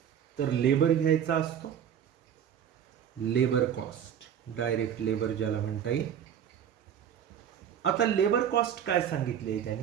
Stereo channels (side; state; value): left; quieter; 8.9 dB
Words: तर लेबर घ्यायचा असतो. लेबर कॉस्ट, डायरेक्ट लेबर ज्याला म्हणता येईल. आता लेबर कॉस्ट काय सांगितले आहे